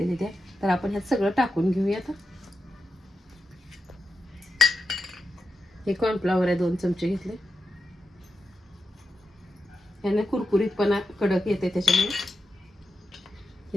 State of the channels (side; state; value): both; normal; correlation 0.88